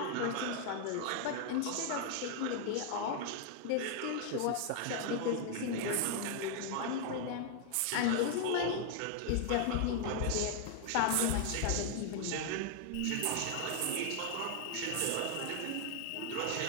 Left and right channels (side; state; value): both; different; correlation 0.00